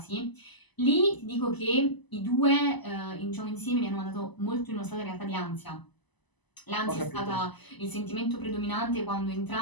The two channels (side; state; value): right; late; 1.0 ms